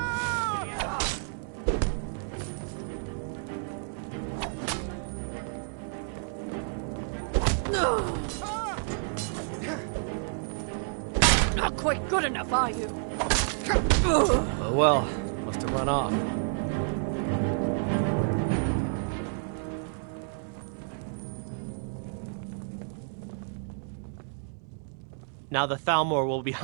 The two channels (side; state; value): left; silent; 58 dB below the other